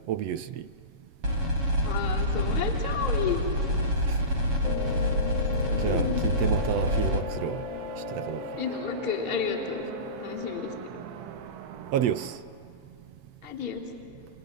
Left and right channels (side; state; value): left; late; 8.0 ms